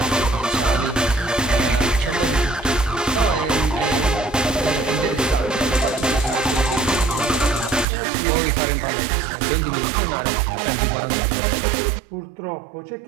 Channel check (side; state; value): left; drops out; at 7.9 s